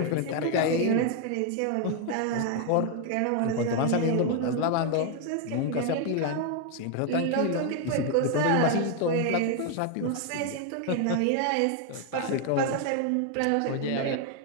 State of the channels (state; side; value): different; both; correlation 0.00